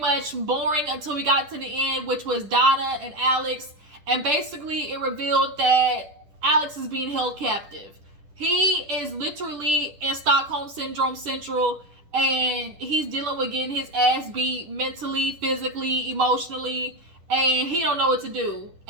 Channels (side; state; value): left; late; 10 ms